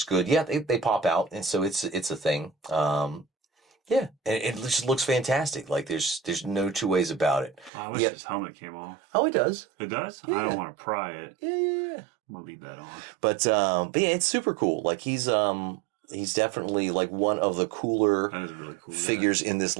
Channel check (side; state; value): left; drops out; at 7.7 s